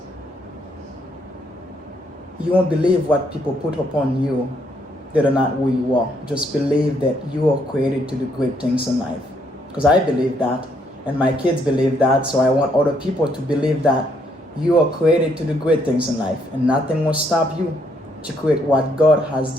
you won't believe what people put upon you that are not who you are. Just believe that you are created to do great things in life. Because I believe that, and my kids believe that, so I want other people to believe that you are created to do great things in life, and nothing will stop you to create what God has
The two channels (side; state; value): both; normal; correlation 0.72